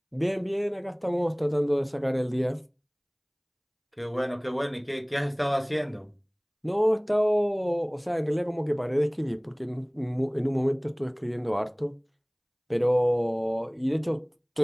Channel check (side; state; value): both; identical; correlation 1.00